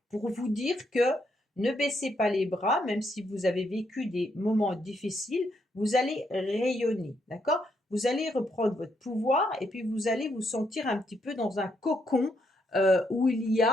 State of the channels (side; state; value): both; normal; correlation 0.76